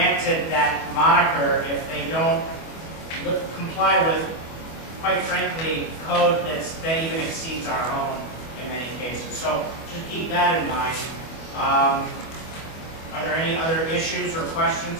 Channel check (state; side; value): late; right; 25 ms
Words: that moniker if they don't comply with, quite frankly, code that even exceeds our own in many cases. So just keep that in mind. Are there any other issues or questions